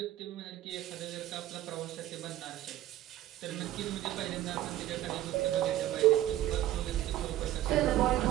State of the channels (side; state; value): left; quieter; 13.9 dB